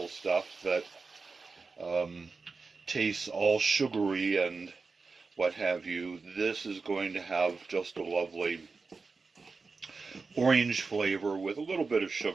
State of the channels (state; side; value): quieter; left; 4.3 dB